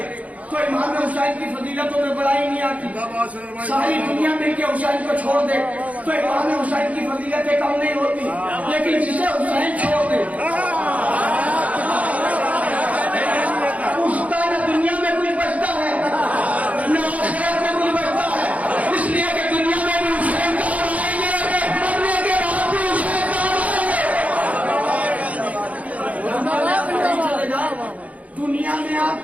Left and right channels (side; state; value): left; late; 0.069 ms